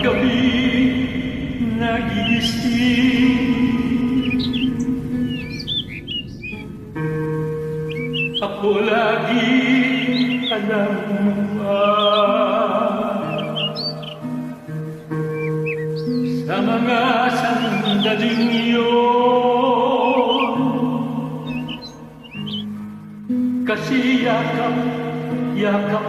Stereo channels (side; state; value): both; identical; correlation 1.00